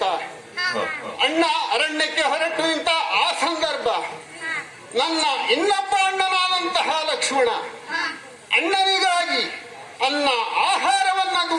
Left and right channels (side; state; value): both; identical; correlation 1.00